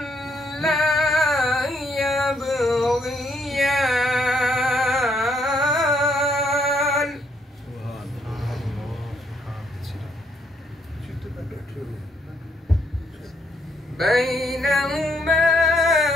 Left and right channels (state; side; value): normal; both; correlation 0.71